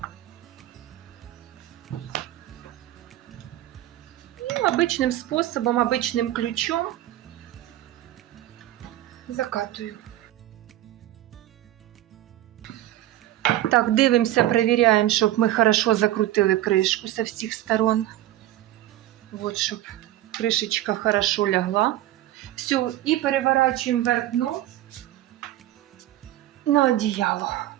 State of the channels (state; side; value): quieter; left; 14.1 dB